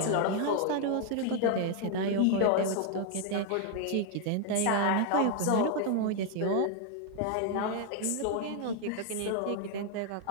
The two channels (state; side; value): different; both; correlation 0.01